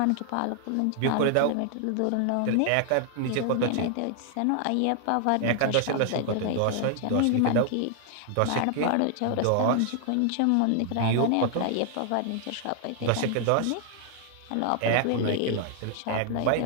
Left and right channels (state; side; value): different; both; correlation 0.00